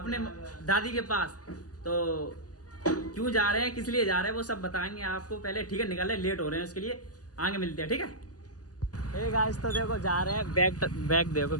दादी के पास। तो क्यों जा रहे हैं, किस लिए जा रहे हैं, वो सब बताएंगे आपको। पहले ठीक है निकल रहे, लेट हो रहे हैं, उसके लिए आगे मिलते हैं, ठीक है। हे गाइस, तो देखो जा रहे हैं, बैग देखो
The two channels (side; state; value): right; late; 0.67 ms